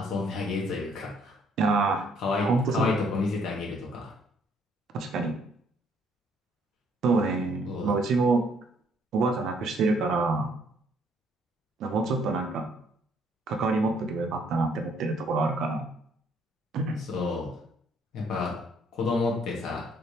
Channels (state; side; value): normal; both; correlation 0.66